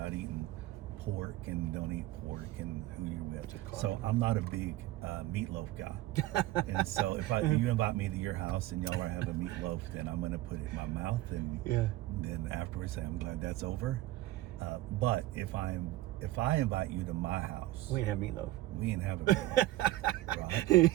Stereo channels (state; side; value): quieter; left; 16.2 dB